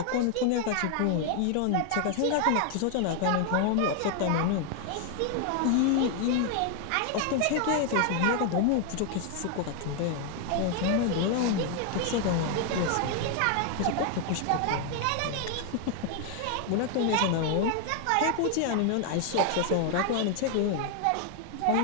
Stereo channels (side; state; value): both; different; correlation 0.00